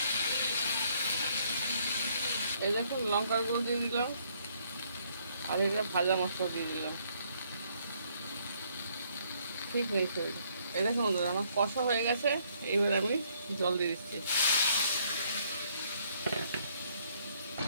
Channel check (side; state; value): both; inverted; correlation -0.68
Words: এই দেখুন লঙ্কার গুঁড়ো দিয়ে দিলাম, আর এটা ভাজা মশলা দিয়ে দিলাম। ঠিক নেই শরীর। এই দেখুন বন্ধুরা আমার কষা হয়ে গেছে। এইবার আমি জল দিয়ে দিচ্ছি।